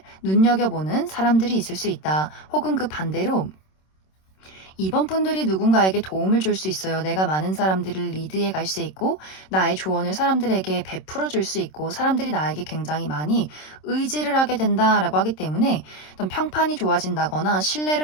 눈여겨보는 사람들이 있을 수 있다. 혹은 그 반대로 이번 분들이 누군가에게 도움을 줄 수 있어요. 내가 많은 사람들을 리드해 갈 수 있고 나의 조언을 사람들에게 베풀어 줄 수 있고 사람들이 나에게 굉장히 많이 의지를 하게 된다라고 하기 때문에 어떤 평판이 좋아진다거나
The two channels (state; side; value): late; right; 26 ms